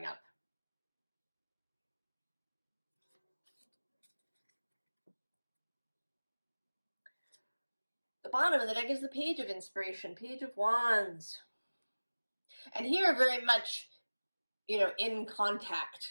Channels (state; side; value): inverted; both; correlation -1.00